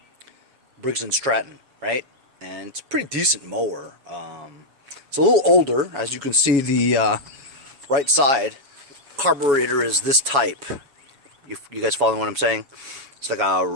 Briggs & Stratton, right? And it's a pretty decent mower. It's a little older, as you can see. The right side carburetor is this type. You guys following what I'm saying? It's like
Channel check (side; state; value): left; late; 7.2 ms